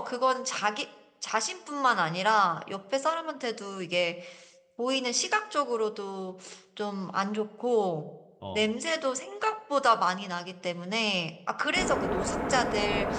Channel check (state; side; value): identical; both; correlation 1.00